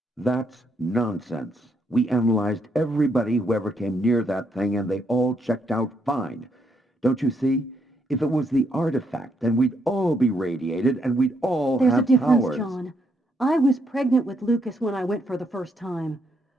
That's nonsense. We analyzed everybody who ever came near that thing, and they all checked out fine. Don't you see? If it was the artifact, then we'd all be radiated, and we'd all There's have a difference, powers. John. I was pregnant with Lucas when I went for the first time.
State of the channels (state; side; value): normal; both; correlation 0.75